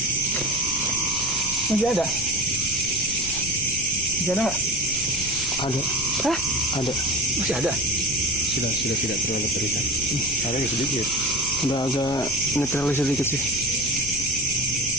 Masih ada. Masih ada nggak? Ada. Hah? Ada. Masih ada. Sudah tidak terlalu terlihat. Ada ya sedikit. Udah agak netralis sedikit sih.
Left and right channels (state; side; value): noise; left; rumble, 13 dB below the sound